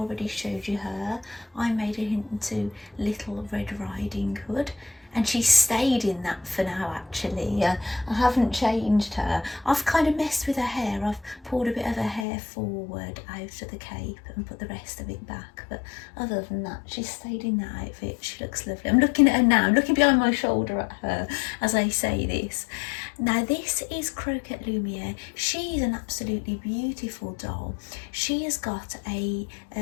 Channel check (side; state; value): right; drops out; at 12.2 s